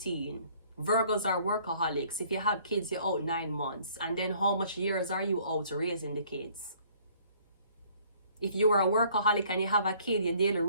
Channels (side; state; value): both; inverted; correlation -0.59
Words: Virgos are workaholics. If you have kids, you're out 9 months. And then how much years are you out raising the kids? If you are a workaholic and you have a kid, your daily